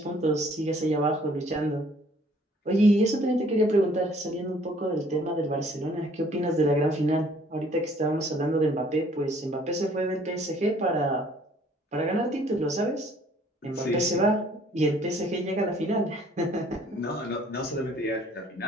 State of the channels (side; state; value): both; normal; correlation 0.58